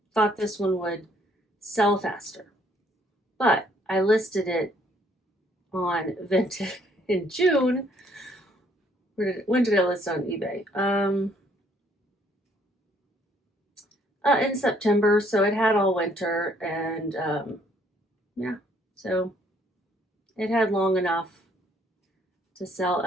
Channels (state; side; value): normal; both; correlation 0.65